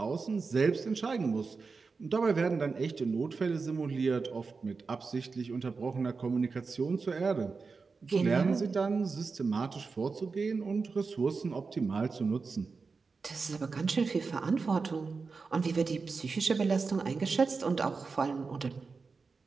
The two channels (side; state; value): left; quieter; 4.6 dB